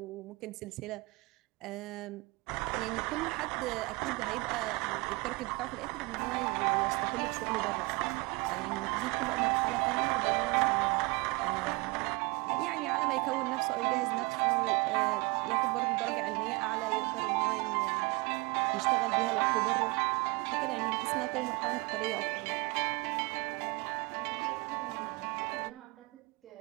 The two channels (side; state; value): left; quieter; 25.9 dB